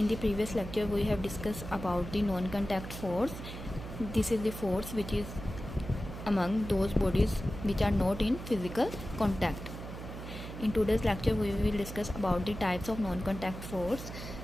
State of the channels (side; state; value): right; noise; hum, 10 dB below the sound